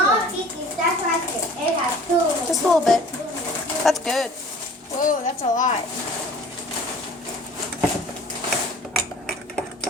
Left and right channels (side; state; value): both; normal; correlation 0.47